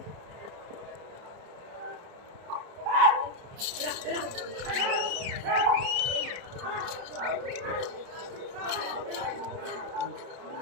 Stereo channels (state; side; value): late; left; 30 ms